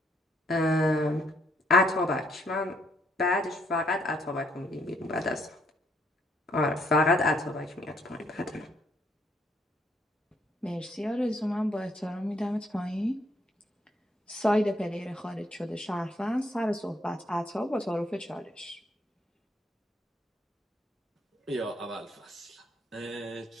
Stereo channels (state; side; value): normal; both; correlation 0.70